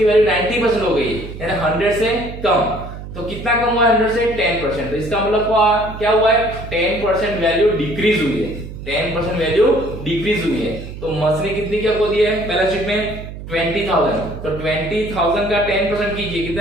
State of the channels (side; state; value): right; noise; hum, 11 dB below the sound